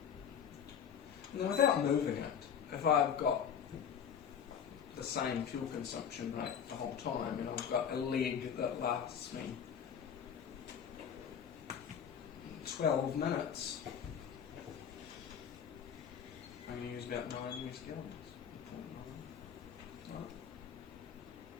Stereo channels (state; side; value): quieter; right; 7.9 dB